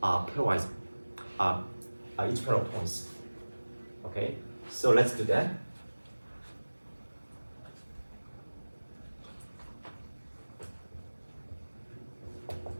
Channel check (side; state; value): both; inverted; correlation -1.00